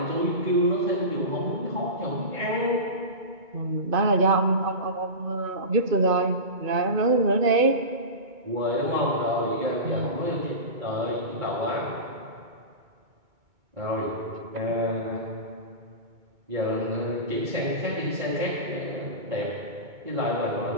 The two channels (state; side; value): late; left; 2.2 ms